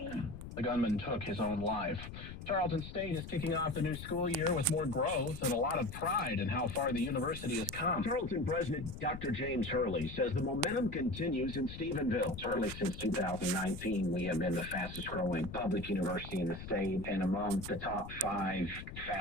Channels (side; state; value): left; noise; rumble, 11 dB below the sound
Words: The gunman took his own life. Tarleton State is kicking off the new school year with more growth and a lot of pride in how far the university has come. Tarleton President Dr. James Hurley says the momentum continues in Stephenville. Certainly since 2019, we have been the fastest growing public university in the state and among the top 5